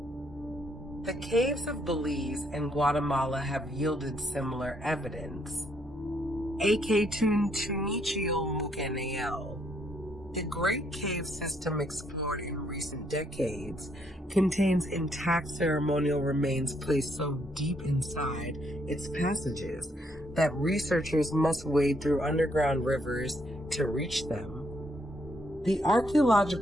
The caves of Belize and Guatemala have yielded similar evidence. The Great Cave System explored in recent decades contains intact ceremonial remains placed so deep inside its passages that researchers must wade through underground rivers to reach them. The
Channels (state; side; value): normal; both; correlation 0.72